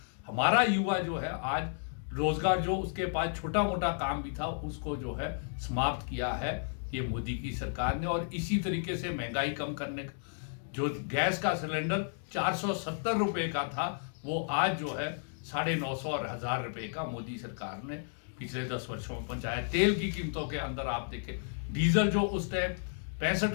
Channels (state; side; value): silent; right; digital silence